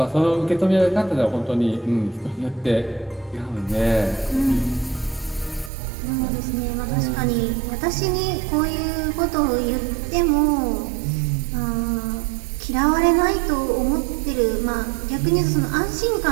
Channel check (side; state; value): left; drops out; at 5.7 s